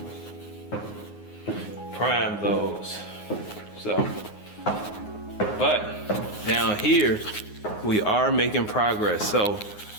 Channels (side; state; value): right; late; 9.6 ms